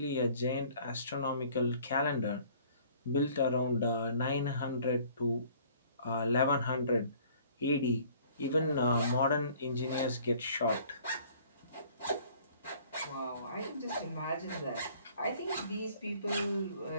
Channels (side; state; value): both; inverted; correlation -0.54